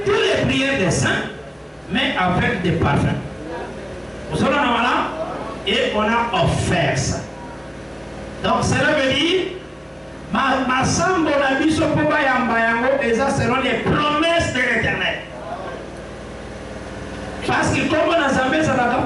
toutes les prières des saints mais avec des parfums vous savez là et on a offert ça donc cela veut dire ma sambo na biso po bayamba yango eza selon les promesses de l'Éternel parce que comme on a Nzambe ezalaka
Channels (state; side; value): identical; both; correlation 1.00